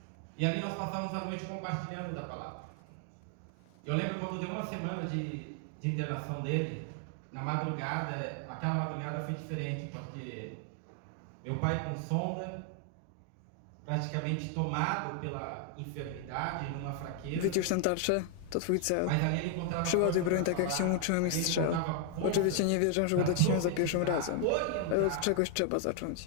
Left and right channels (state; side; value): different; both; correlation 0.00